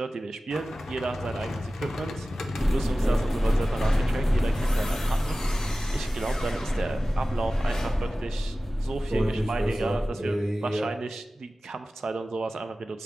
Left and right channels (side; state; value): both; normal; correlation 0.96